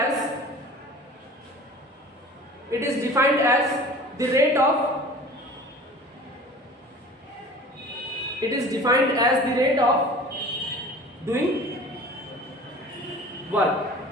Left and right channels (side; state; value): both; normal; correlation 0.42